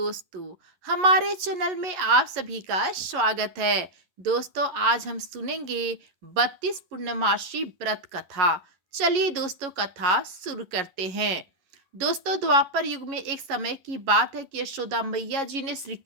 हमारे चैनल में आप सभी का स्वागत है। दोस्तों, आज हम सुनेंगे 32 पूर्णमासी व्रत कथा। चलिए दोस्तों, कथा शुरू करते हैं। दोस्तों, द्वापर युग में एक समय की बात है कि यशोदा मैया जी ने श्री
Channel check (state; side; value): late; left; 11 ms